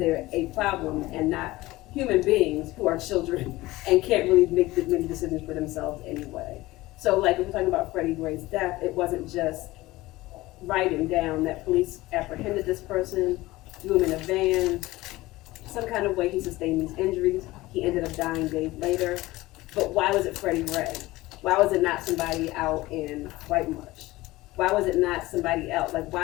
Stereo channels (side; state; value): right; quieter; 18.8 dB